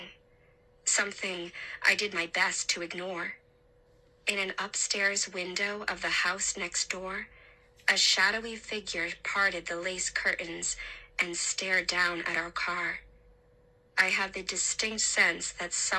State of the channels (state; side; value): identical; both; correlation 1.00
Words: something I did my best to ignore. In an upstairs window of the house next door, a shadowy figure parted the lace curtains and stared down at our car. I had the distinct sense that